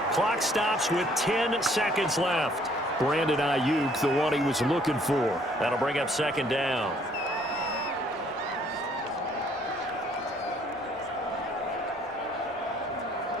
Clock stops with 10 seconds left. Brandon Ayuk, the one he was looking for. That'll bring up second down.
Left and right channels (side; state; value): both; normal; correlation 0.62